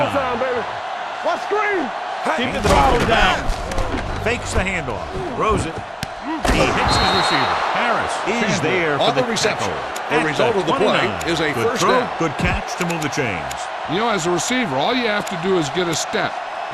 Baby. What screen? Keep the ball down. Fakes the handoff. Throws it. He hits his receiver. Harris is there for the reception. The result of the play is a good first throw, down. good catch to move the chains. You know, as a receiver, all you have to do is get a step.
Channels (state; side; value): identical; both; correlation 1.00